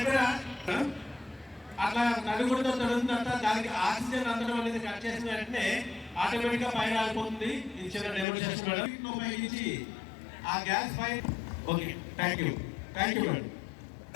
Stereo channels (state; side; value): drops out; right; at 8.2 s